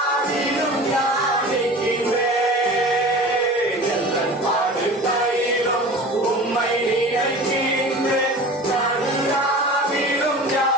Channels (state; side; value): normal; both; correlation 0.38